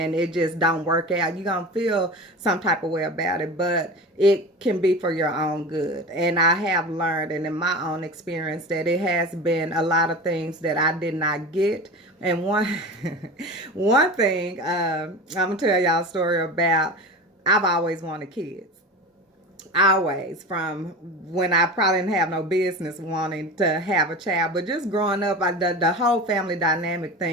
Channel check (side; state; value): both; normal; correlation 0.30